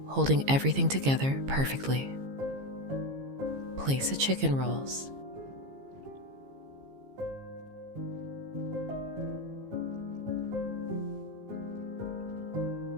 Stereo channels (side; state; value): left; late; 15 ms